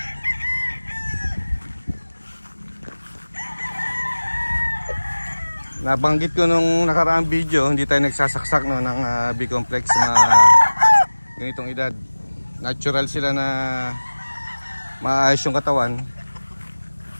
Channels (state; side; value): inverted; both; correlation -1.00